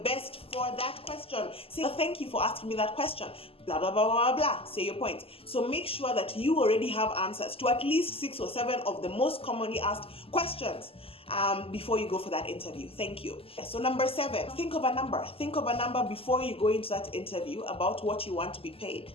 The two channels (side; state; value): right; late; 0.27 ms